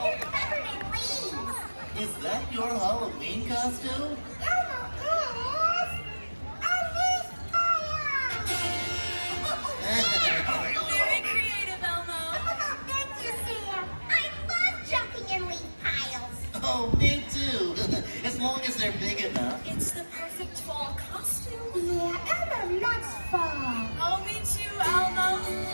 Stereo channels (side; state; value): both; inverted; correlation -1.00